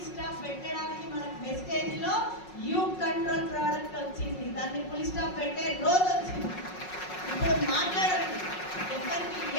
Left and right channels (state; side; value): late; right; 5.5 ms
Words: స్టాప్ పెట్టడానికి మనకు మెసేజ్ లో యూ కంట్రోల్ ప్రోడక్ట్ వచ్చింది. దాన్ని ఫుల్ స్టాప్ పెట్టే రోజు వచ్చింది. ఇప్పుడు మాట్లాడండి, ఎవరికి